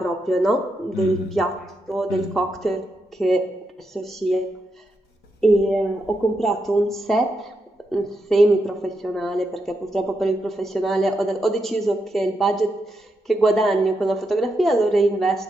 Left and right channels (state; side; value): normal; both; correlation 0.83